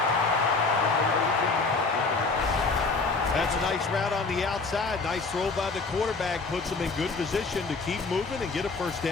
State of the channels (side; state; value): right; quieter; 4.0 dB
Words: That's a nice route on the outside. Nice throw by the quarterback. Puts them in good position to keep moving and get a first